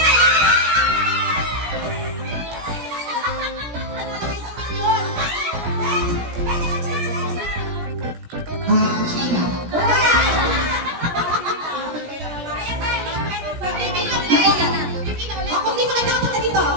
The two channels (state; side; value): late; left; 17 ms